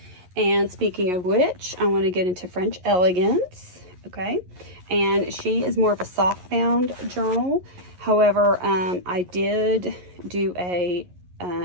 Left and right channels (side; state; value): left; late; 11 ms